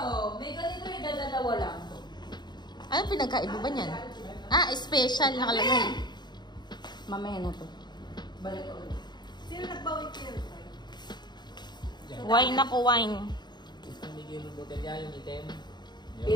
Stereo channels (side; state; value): right; late; 0.21 ms